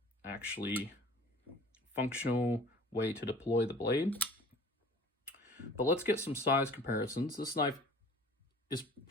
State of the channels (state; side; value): normal; both; correlation 0.46